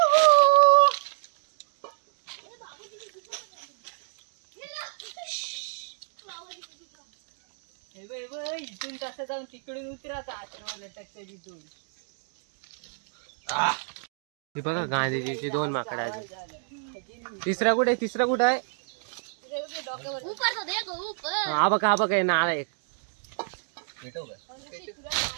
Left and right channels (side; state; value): left; silent; 55 dB below the other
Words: इथून कसं जाऊन तिकडून उतरायचा. हे बघा गांधीजीची 2 माकडं आहेत. तिसरा कुठे आहे. हा बघा नाला एक.